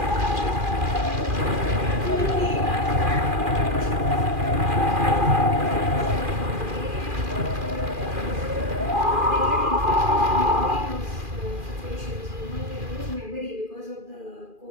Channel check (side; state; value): left; late; 2.4 ms